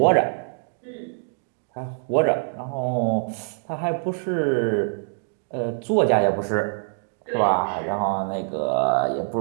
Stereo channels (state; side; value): silent; left; digital silence